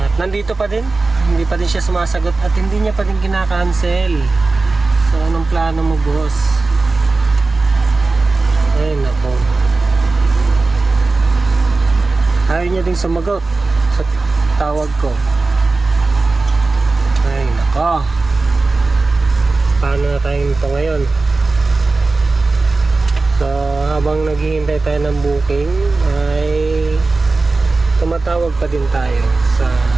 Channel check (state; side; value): quieter; left; 3.6 dB